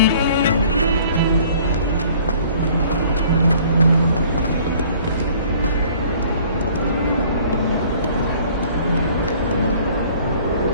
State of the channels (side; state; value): both; inverted; correlation -0.54